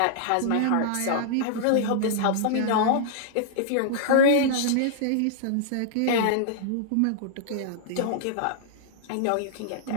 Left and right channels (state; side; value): different; both; correlation -0.01